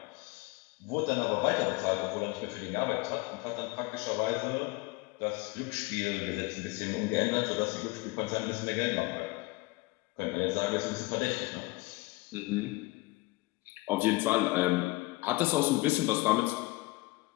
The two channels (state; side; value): quieter; right; 22.6 dB